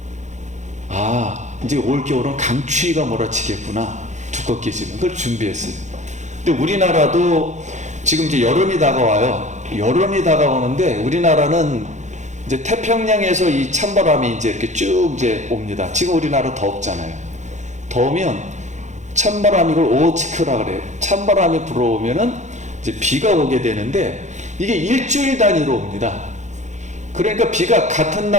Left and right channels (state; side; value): late; left; 0.34 ms